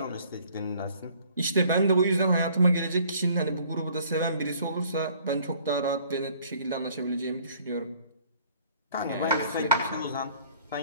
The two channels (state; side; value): inverted; both; correlation -0.57